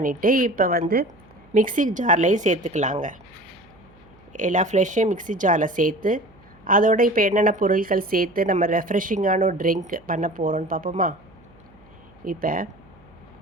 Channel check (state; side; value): noise; right; hum, 28 dB below the sound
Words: இப்போ மிக்ஸி ஜார்லேயும் சேர்த்துக்கலாங்க. எல்லா ஃப்ரெஷ்ஷையும் மிக்ஸி ஜாரில் சேர்த்து அதோட இப்போ என்னென்ன பொருட்கள் சேர்த்து நம்ம ரெஃப்ரெஷிங்கான ஒரு ட்ரிங்க் பண்ண போகிறோன்னு பார்ப்போமா? இப்போ